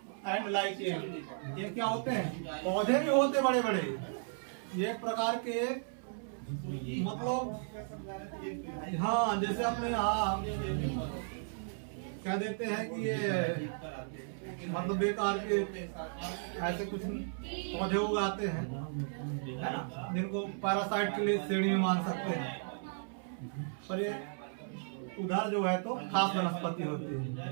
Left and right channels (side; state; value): left; silent; 54 dB below the other